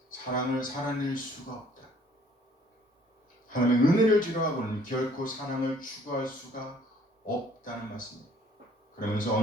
사랑을 살아낼 수가 없다. 하나님의 은혜를 지루하고는 결코 사랑을 추구할 수가 없다는 말씀입니다. 그러면서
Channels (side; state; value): both; normal; correlation 0.59